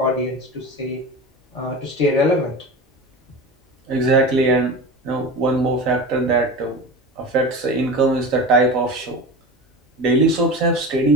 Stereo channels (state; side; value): normal; both; correlation 0.30